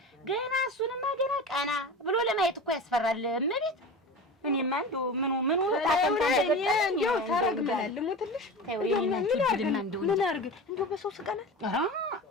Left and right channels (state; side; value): normal; both; correlation 0.30